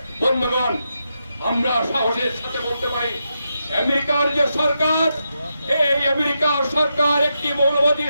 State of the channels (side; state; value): both; inverted; correlation -0.85